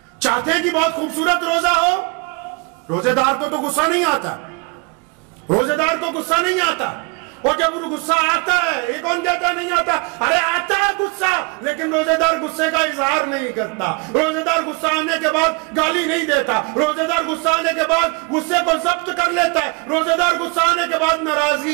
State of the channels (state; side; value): quieter; left; 29.9 dB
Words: چاہتے ہیں کہ بہت خوبصورت روزہ ہو، روزے دار کو تو غصہ نہیں آتا، روزے دار کو غصہ نہیں آتا، اور جب غصہ آتا ہے، یہ کون کہتا ہے نہیں آتا؟ ارے آتا ہے غصہ، لیکن روزے دار غصے کا اظہار نہیں کرتا، روزے دار غصہ آنے کے بعد گالی نہیں دیتا، روزے دار غصہ آنے کے بعد غصے کو ضبط کر لیتا ہے، روزے دار غصہ آنے کے بعد